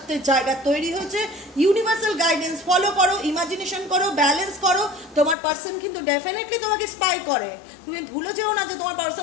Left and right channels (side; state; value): right; drops out; at 5.4 s